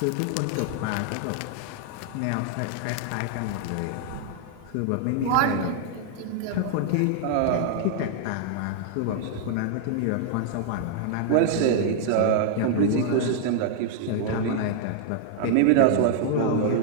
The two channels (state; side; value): different; both; correlation -0.01